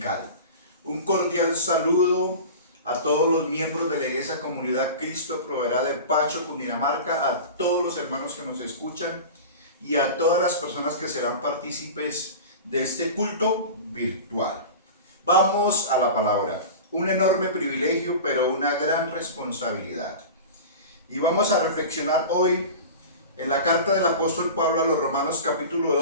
Un cordial saludo a todos los miembros de la Iglesia Comunidad Cristo Proveerá de Pacho, Cundinamarca, a todos los hermanos que nos escuchan y a todas las personas que serán partícipes de este culto virtual. Vamos a la palabra. Un enorme privilegio, pero una gran responsabilidad. Y vamos a reflexionar hoy en la carta del apóstol Pablo a los Romanos capítulo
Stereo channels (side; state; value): both; inverted; correlation -0.33